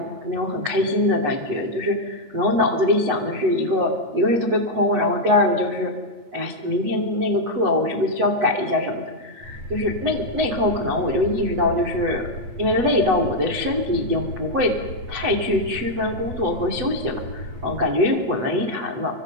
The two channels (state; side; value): late; left; 8.1 ms